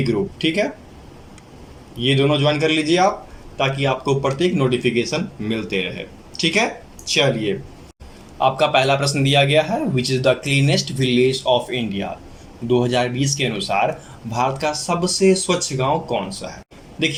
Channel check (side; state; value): both; identical; correlation 1.00